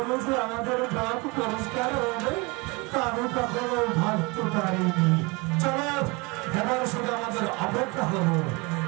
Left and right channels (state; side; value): quieter; left; 27.1 dB